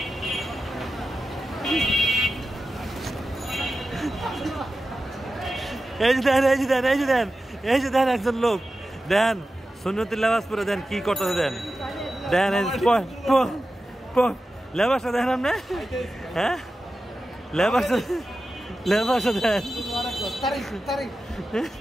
এই যে দেন এই যে দেন এই যে দেন এই যে দেন একজন লোক দেন সুন্নতি লেবাস পরে দেন কি করতেছে দেন দেন লেবাসটা দেন আপনি হ্যাঁ লেবাসটা লেবাসটা দেন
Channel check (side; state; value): both; normal; correlation 0.93